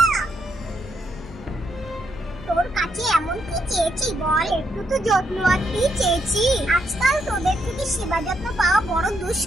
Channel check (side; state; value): both; normal; correlation 0.78